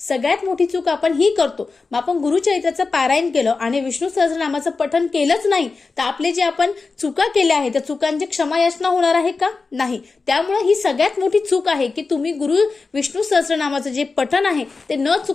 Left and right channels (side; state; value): right; quieter; 4.2 dB